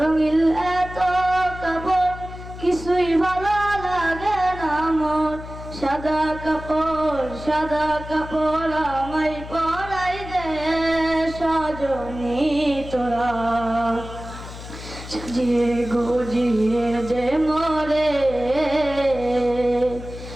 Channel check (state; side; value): noise; left; hum, 12 dB below the sound